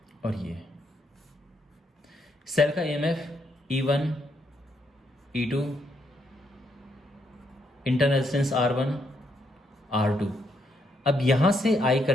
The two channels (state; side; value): normal; both; correlation 0.76